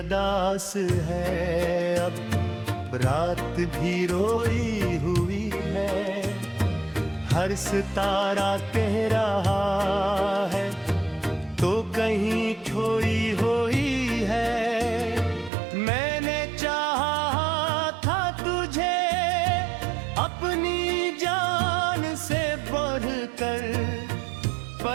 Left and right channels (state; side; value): drops out; left; at 15.5 s